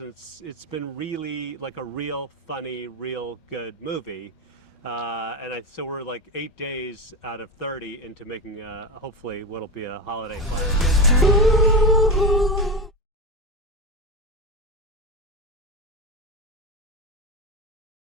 it's been really like a real funny, real good movie. So we're like 8 days out of 30 into making hopefully what'll be a holiday classic.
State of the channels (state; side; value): normal; both; correlation 0.17